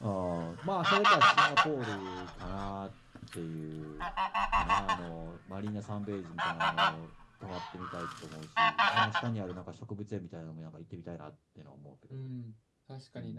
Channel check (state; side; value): identical; both; correlation 1.00